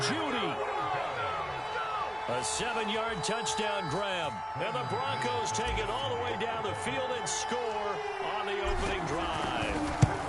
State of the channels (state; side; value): identical; both; correlation 1.00